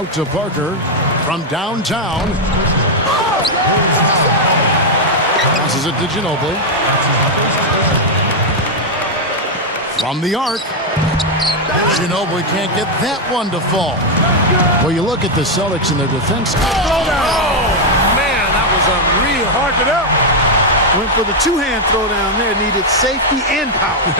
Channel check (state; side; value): normal; both; correlation 0.01